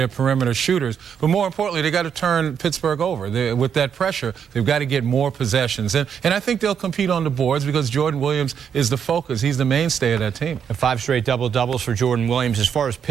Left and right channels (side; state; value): left; quieter; 7.7 dB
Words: perimeter shooters. But more importantly, they got to turn Pittsburgh over. With that pressure, they've got to get more possessions. And I think they'll compete on the boards because Jordan Williams is the focus. He's the mainstay of that team. 5 straight double-doubles for Jordan Williams. As far as